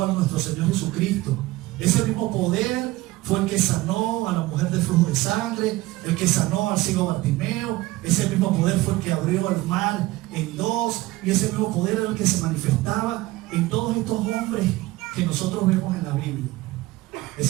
a nuestro Señor Jesucristo. Ese mismo poder fue el que sanó a la mujer del flujo de sangre, el que sanó al ciego Bartimeo. Ese mismo poder fue el que abrió el mar en dos, y ese mismo poder era el que se manifestaba en todos estos hombres que nosotros vemos en la Biblia.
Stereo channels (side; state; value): left; quieter; 18.7 dB